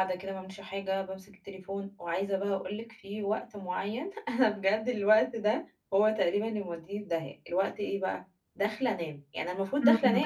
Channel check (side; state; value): both; identical; correlation 1.00